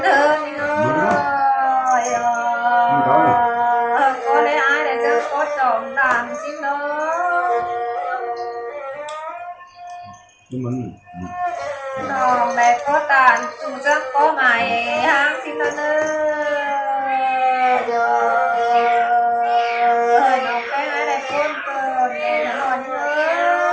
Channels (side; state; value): both; identical; correlation 1.00